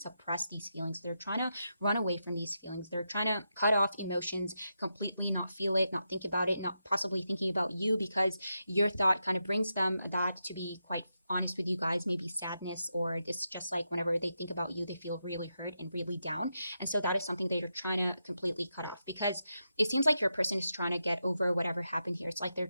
these feelings. They're trying to run away from these feelings. They're trying to cut off emotions completely, not feel it, not think about it, not possibly thinking about you, because your thought kind of brings them that, to be quite honest with you guys, maybe sadness, or just like whenever they think about you, they feel really hurt and really down. And so that is something that you're trying to completely cut off, because it seems like your person is trying to get over whatever happened here. It's like they're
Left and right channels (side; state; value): both; inverted; correlation -0.86